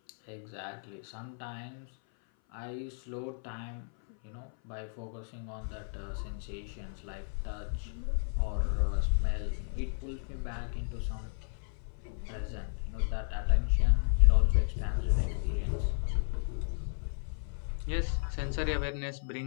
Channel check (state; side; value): silent; right; 55 dB below the other